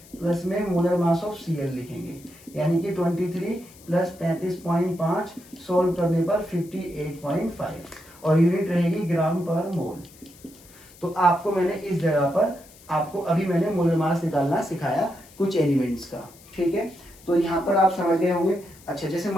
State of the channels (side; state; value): left; noise; hiss, 23 dB below the sound